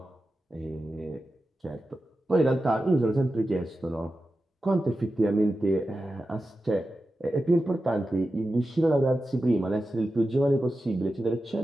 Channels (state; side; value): normal; both; correlation 0.92